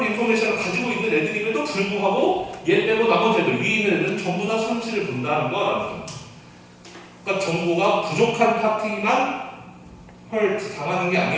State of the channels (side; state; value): both; identical; correlation 1.00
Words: 인포메이션을 가지고 있는 애들임에도 불구하고 얘 빼고 나머지 애들, 위에 있는 애들은 전부 다 손실을 본다는 거라는 겁니다. 그러니까 정보가 부족한 파티만 당하는 게